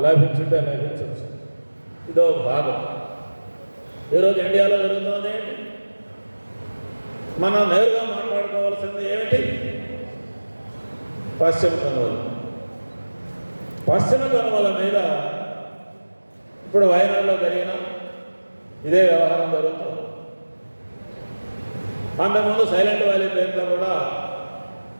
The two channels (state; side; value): inverted; both; correlation -1.00